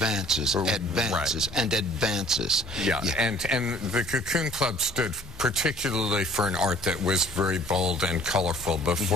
and advances. And the Kokoon Club stood particularly for an art that was very bold and colorful.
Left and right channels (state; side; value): normal; both; correlation 0.54